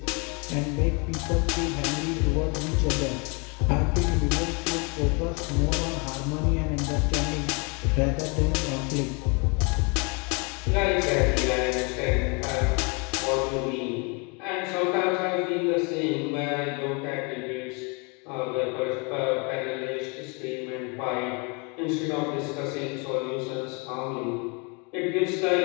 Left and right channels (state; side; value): quieter; right; 32.0 dB